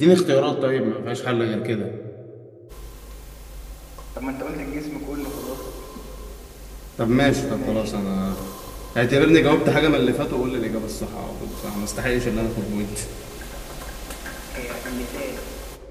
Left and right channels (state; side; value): identical; both; correlation 1.00